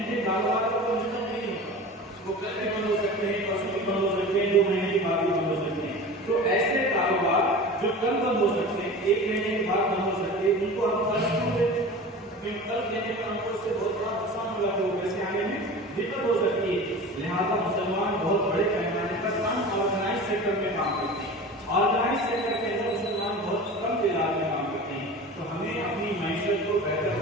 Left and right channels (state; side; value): normal; both; correlation 0.35